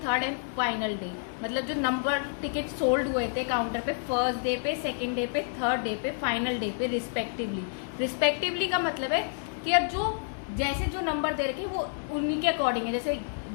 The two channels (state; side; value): silent; right; digital silence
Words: third and final day. मतलब जो नंबर टिकट सोल्ड हुए थे काउंटर पे फर्स्ट डे पे, सेकेंड डे पे, थर्ड डे पे, फाइनल डे पे रिस्पेक्टिवली का मतलब है कि अब जो जैसे जो नंबर दे रखे वो उन्हीं के अकॉर्डिंग है. जैसे